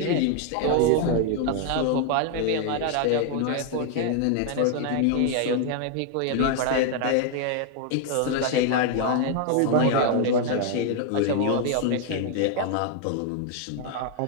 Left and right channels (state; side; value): different; both; correlation 0.00